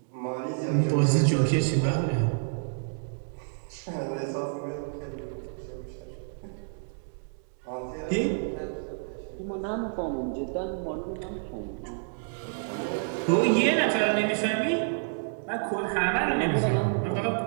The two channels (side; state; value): left; silent; digital silence